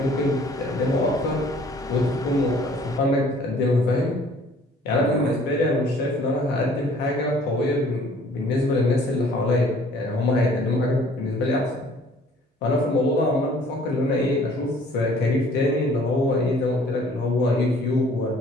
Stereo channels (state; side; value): normal; both; correlation 0.55